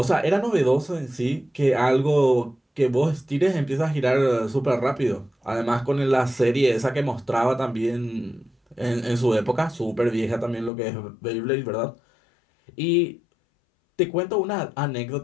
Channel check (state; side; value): drops out; right; at 10.7 s